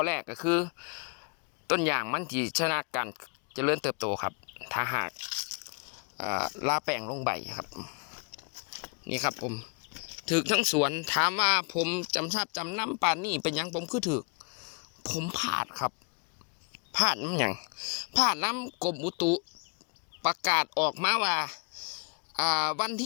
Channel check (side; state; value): right; quieter; 35.3 dB